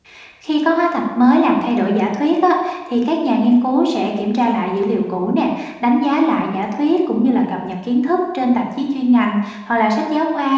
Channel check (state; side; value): identical; both; correlation 1.00